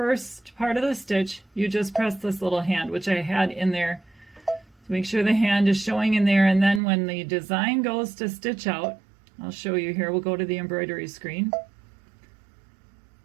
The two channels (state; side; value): drops out; left; at 6.8 s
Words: part of the stitch, you just press this little hand, which I had in there to make sure the hand is showing in there. And then when the design goes to stitch out, I'll show you here, we'll go to the embroidery screen.